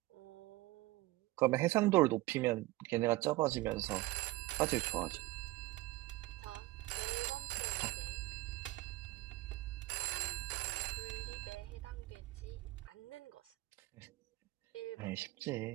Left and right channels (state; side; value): quieter; left; 19.3 dB